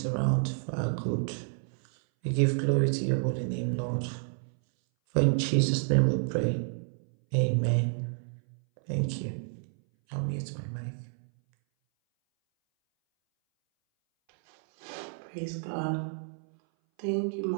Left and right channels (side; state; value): left; silent; 58 dB below the other